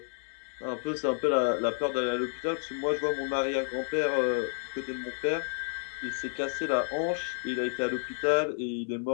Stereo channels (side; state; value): right; silent; 57 dB below the other